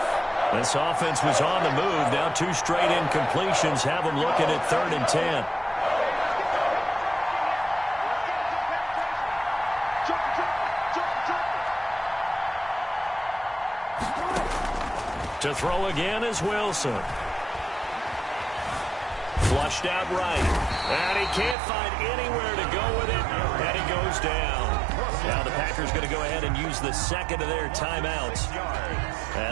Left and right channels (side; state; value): left; drops out; at 21.6 s